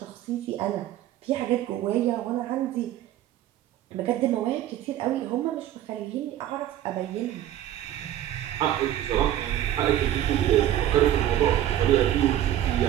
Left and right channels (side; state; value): left; quieter; 12.3 dB